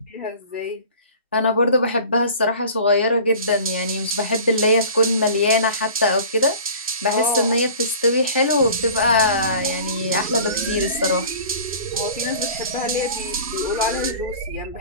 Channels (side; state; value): both; inverted; correlation -0.42